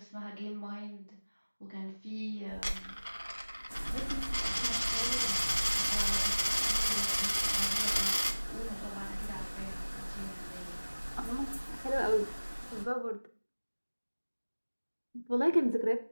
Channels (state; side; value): inverted; both; correlation -1.00